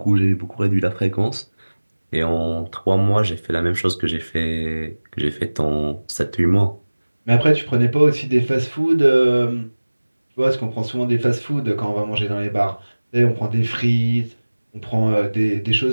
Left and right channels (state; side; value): inverted; both; correlation -1.00